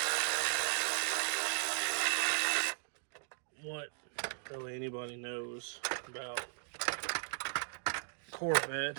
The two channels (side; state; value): left; silent; digital silence